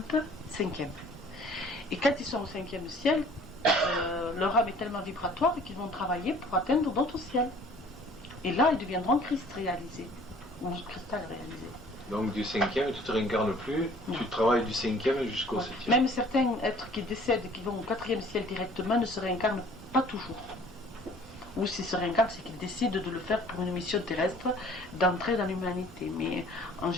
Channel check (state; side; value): normal; both; correlation 0.52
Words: peu, cinquième. Et quand ils sont au cinquième ciel, leur âme est tellement vibratoire qu'ils vont travailler pour atteindre d'autres ciels. Et là, ils deviendront Christ réalisé, ou cristal réalisé. Donc du cinquième, tu ne te réincarnes plus, non. Tu travailles du cinquième jusqu'au septième. Même certains êtres qui décèdent et qui vont au quatrième ciel directement ne se réincarnent pas toujours. Ou s'ils se réincarnent, c'est qu'ils décident de le faire pour une mission terrestre, d'entrer dans l'humanité. Mais en